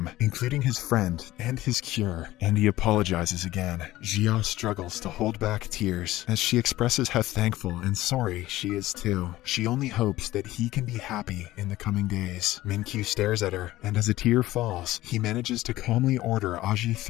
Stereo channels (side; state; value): right; quieter; 16.3 dB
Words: including his friend and his cure, and he apologizes again. Jia struggles to hold back tears as she expresses how thankful and sorry she is too. She only hopes that he can be happy in the coming days. Min-kyu stares at her, and as a tear falls, he manages to calmly order